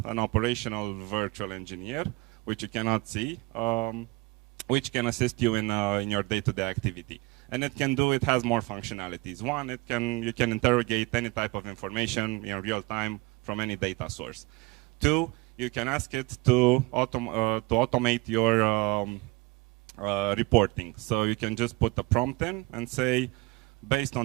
an operational virtual engineer, which you cannot see, which can assist you in your day-to-day activity. And it has more functionalities. One, you can interrogate any type of information in real time from any data source. Two, you can ask it to automate your reporting. So you can just put a prompt in and say, based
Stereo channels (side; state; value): left; quieter; 24.5 dB